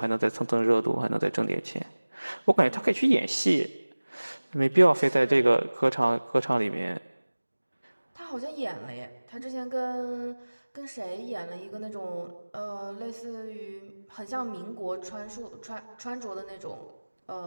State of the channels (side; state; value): both; inverted; correlation -1.00